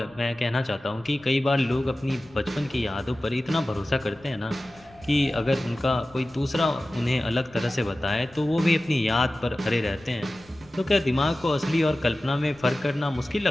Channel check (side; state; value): left; noise; rumble, 26 dB below the sound